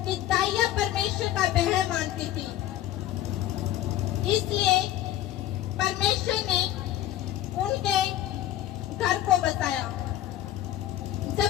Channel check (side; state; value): right; quieter; 13.1 dB